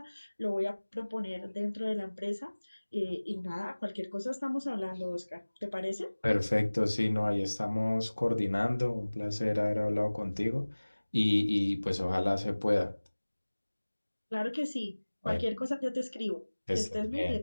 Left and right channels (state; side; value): inverted; both; correlation -1.00